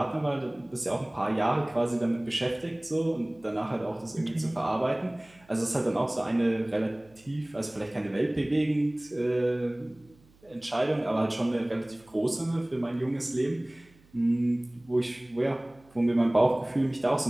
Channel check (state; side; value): noise; right; hum, 29 dB below the sound